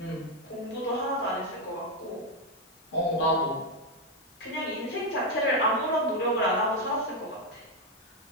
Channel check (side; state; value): left; noise; hiss, 30 dB below the sound